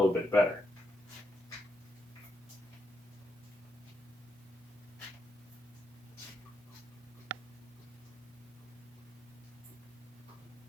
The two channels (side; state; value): both; normal; correlation 0.81